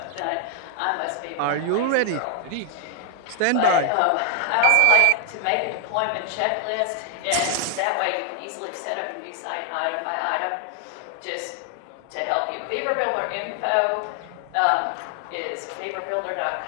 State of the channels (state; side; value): different; both; correlation 0.00